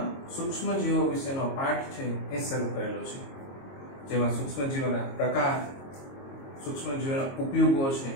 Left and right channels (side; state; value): right; late; 22 ms